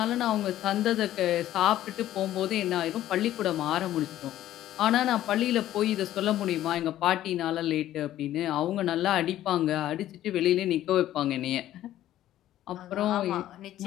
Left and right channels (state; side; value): quieter; right; 13.1 dB